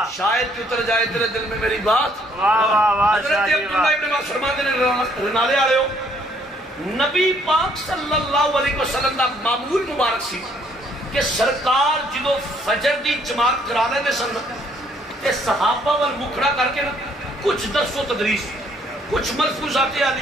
شاید کہ اتر جائے تیرے دل میں میری بات. حضرت عبداللہ ابن عباس فرماتے نے رنالے آلے ہو، نبی پاک صلی اللہ علیہ وسلم دا معمول مبارک سی کہ سرکار جدو فجر دی جماعت کرا لے دے سن تے صحابہ وال مکھڑا کر کے نا کچھ درس و تدریس، کچھ ملفوظات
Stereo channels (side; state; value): both; normal; correlation 0.65